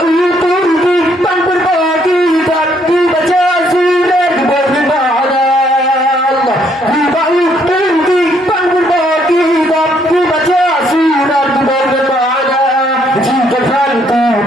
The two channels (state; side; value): normal; both; correlation 0.69